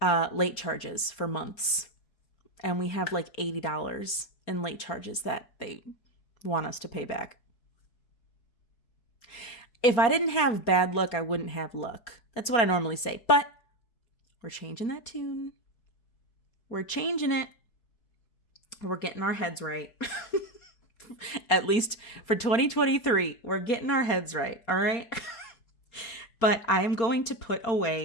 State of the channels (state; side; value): late; right; 4.3 ms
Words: late charges for months. And we have like $80 in late charges that they want us to pay back. If I didn't have bad luck, I wouldn't have luck. That's what I normally say. But we're changing that tune. We're changing it. We're getting our heads right. At least for 2023, we're getting our heads right. All right. But I am going to put